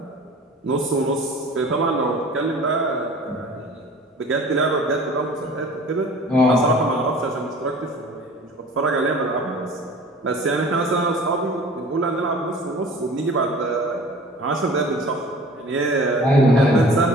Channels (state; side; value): normal; both; correlation 0.44